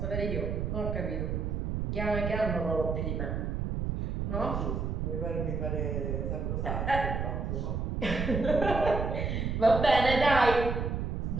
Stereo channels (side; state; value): right; noise; rumble, 2 dB below the sound